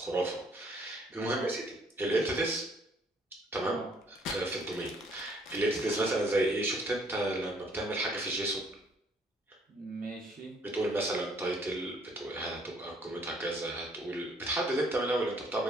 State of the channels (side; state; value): both; normal; correlation 0.64